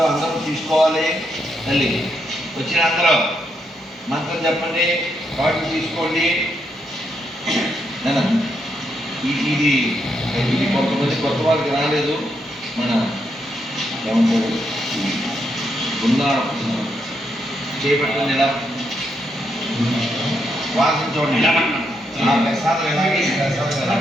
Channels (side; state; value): both; normal; correlation 0.79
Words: అందరూ తీసుకోవాలి. తల్లి వచ్చిన అందరూ మంత్రం చెప్పండి, వాటిని తీసుకోండి. ఇది ఇది కొంతమంది కొత్త వాళ్ళకి రాలేదు. మన ఏమంటారు చేపట్టండి, ఇలా వాసన చూడండి. ఆ ప్రసాదం ఎలాగే ఈ ప్రసాదం